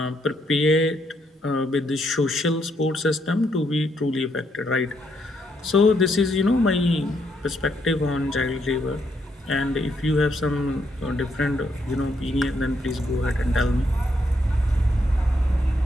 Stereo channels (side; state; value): both; normal; correlation 0.76